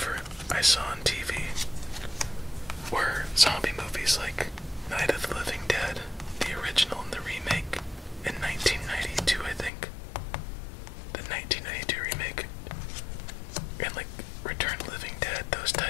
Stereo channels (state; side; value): drops out; right; at 9.7 s